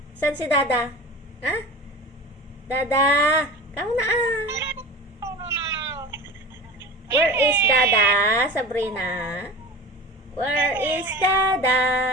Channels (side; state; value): both; normal; correlation 0.33